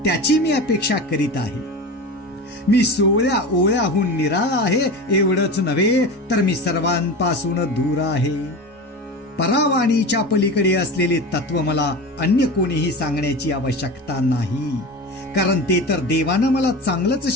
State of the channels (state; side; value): normal; both; correlation 0.29